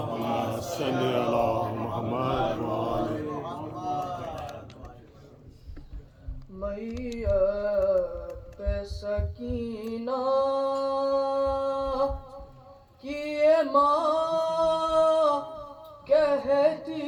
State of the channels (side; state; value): both; identical; correlation 1.00